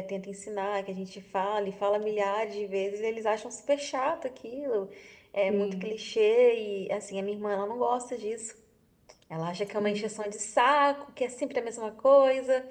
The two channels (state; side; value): identical; both; correlation 1.00